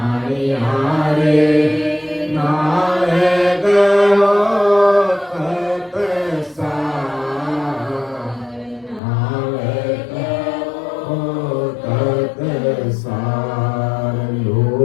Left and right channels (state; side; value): drops out; right; at 9.0 s